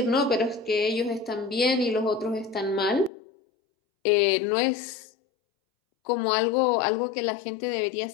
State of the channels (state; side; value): drops out; right; at 3.1 s